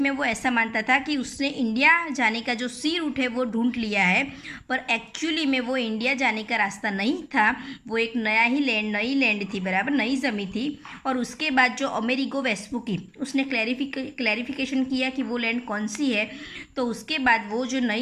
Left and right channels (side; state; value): both; identical; correlation 1.00